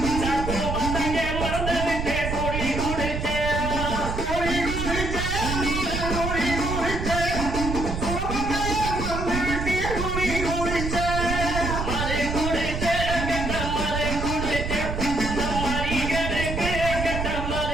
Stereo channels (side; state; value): right; noise; rumble, 3 dB below the sound